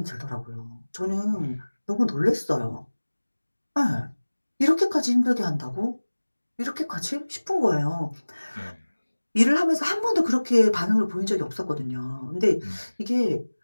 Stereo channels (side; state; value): both; inverted; correlation -1.00